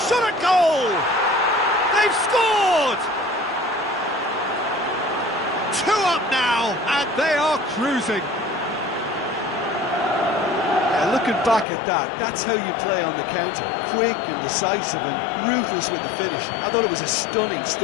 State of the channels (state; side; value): drops out; right; at 11.7 s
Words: Shot at goal! They've scored! 2 up now, and they are cruising. Looking back at that, that's how you play on the counter. Quick and decisive and ruthless with the finish. I thought it was a stunning,